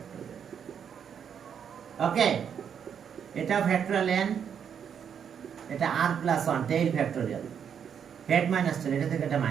ওকে। এটা ফ্যাক্টরিয়াল n, এটা r plus 1 tail factorial, head minus tail, এটা থেকে এটা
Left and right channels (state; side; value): quieter; left; 7.9 dB